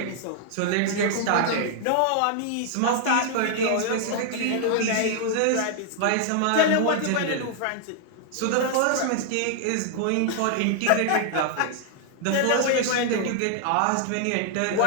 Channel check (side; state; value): both; different; correlation 0.00